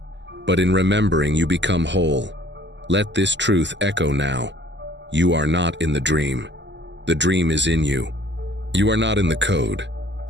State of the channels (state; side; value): late; left; 0.52 ms